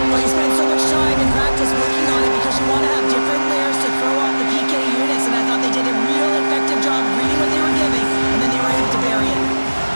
Well, you spend so much time in practice working on it because you want to have different layers to throw off the PK units, and I thought they did a real effective job reading what they were giving, and then they were able to bury it.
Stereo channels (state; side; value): inverted; both; correlation -1.00